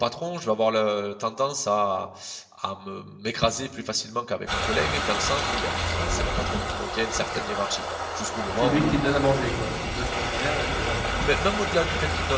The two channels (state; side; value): identical; both; correlation 1.00